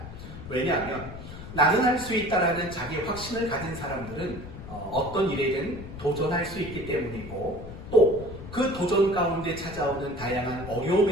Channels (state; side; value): noise; left; rumble, 12 dB below the sound